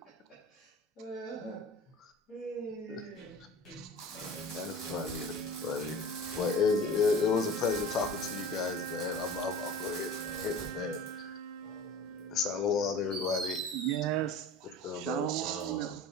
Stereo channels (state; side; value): normal; both; correlation 0.38